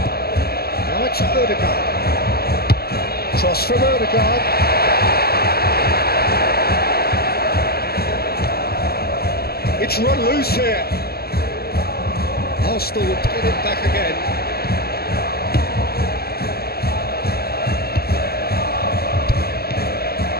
Now it's Odegaard. Cross from Odegaard. It's run loose here. Arsenal will get it back again.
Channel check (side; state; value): right; late; 0.46 ms